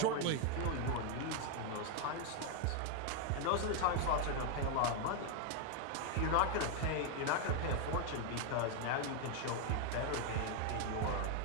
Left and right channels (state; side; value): different; both; correlation 0.00